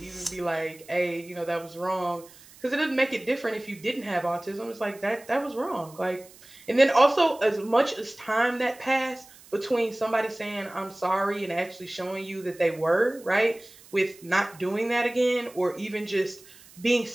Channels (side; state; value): right; noise; hiss, 23 dB below the sound